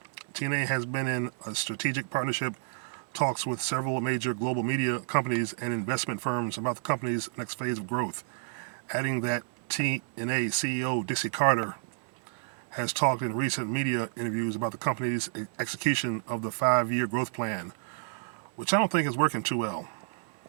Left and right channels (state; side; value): silent; left; digital silence